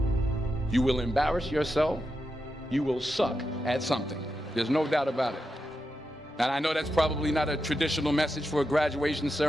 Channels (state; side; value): normal; both; correlation 0.87